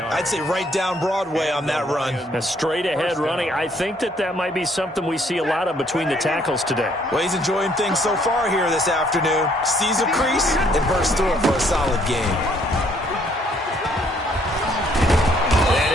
say right down Broadway on that run. A straight-ahead running. I think that might be something we see a lot of between the tackles today. Well, he's enjoying things so far here this afternoon. Sees a crease and bursts through it for a solid gain.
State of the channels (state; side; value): normal; both; correlation 0.65